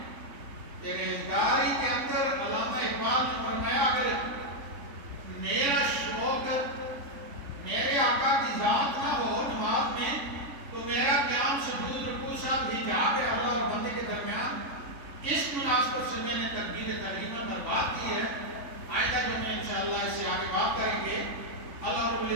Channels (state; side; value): late; left; 3.8 ms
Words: پرہیزگاری کے اندر علامہ اقبال نے فرمایا اگر میرا شوق میرے آقا کی ذات نہ ہو نماز میں تو میرا قیام سجود رکوع سب حجاب ہے اللہ اور بندے کے درمیان۔ اس مناسبت سے میں نے تکبیر تحریمہ پر بات کی ہے۔ آئندہ جو میں انشاءاللہ اس سے آگے بات کریں گے۔ اللہ رب